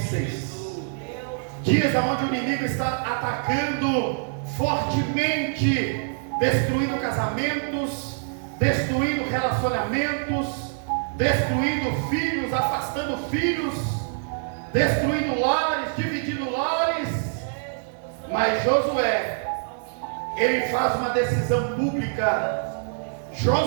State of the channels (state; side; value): silent; left; digital silence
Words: dias onde o inimigo está atacando fortemente, destruindo casamentos, destruindo relacionamentos, destruindo filhos, afastando filhos, destruindo lares, dividindo lares. Mas Josué, ele faz uma decisão pública.